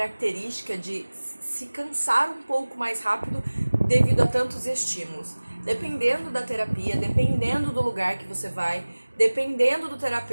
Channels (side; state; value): both; inverted; correlation -1.00